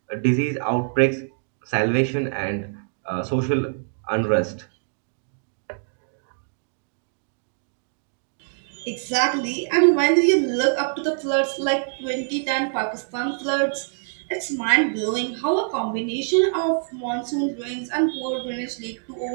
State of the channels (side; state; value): left; silent; digital silence